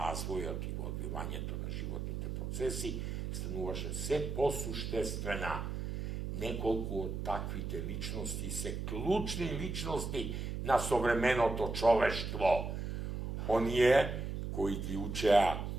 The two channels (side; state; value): right; noise; hum, 4 dB below the sound